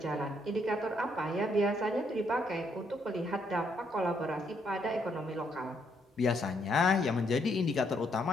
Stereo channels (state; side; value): normal; both; correlation 0.73